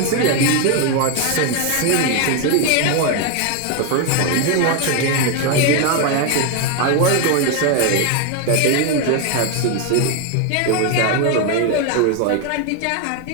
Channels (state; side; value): different; both; correlation 0.01